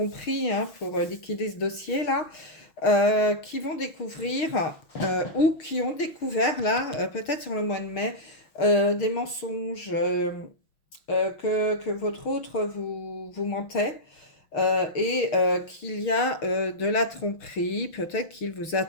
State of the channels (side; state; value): right; late; 6.5 ms